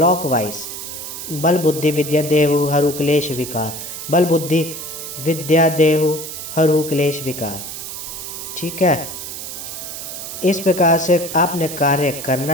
बल बुद्धि विद्या देहु हरु क्लेश विकार, बल बुद्धि विद्या देहु हरु क्लेश विकार, ठीक है। इस प्रकार से आपने कार्य करना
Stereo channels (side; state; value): right; noise; hiss, 8 dB below the sound